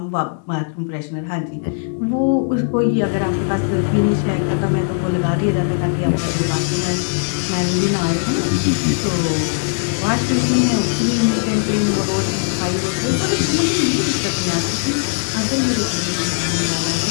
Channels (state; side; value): silent; right; digital silence